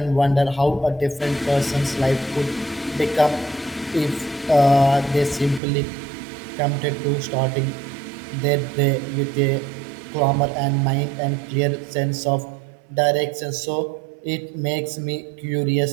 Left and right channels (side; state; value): left; drops out; at 5.6 s